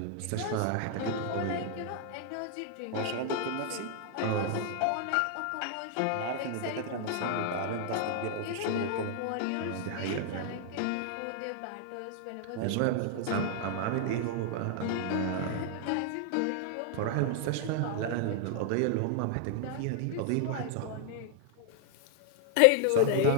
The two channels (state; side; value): different; both; correlation 0.00